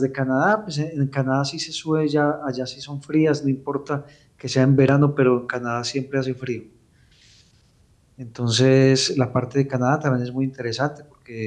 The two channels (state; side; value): identical; both; correlation 1.00